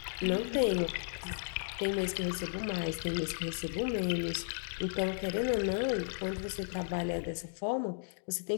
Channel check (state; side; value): silent; right; digital silence